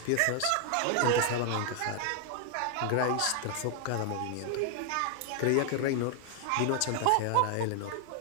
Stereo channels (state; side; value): different; both; correlation 0.00